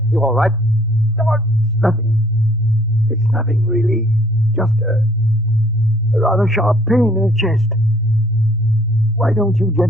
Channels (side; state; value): both; normal; correlation 0.60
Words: You all right? It's nothing. It's nothing, really. Just a rather sharp pain in the chest. Why don't you